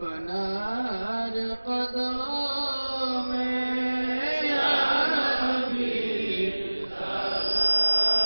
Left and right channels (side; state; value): both; inverted; correlation -1.00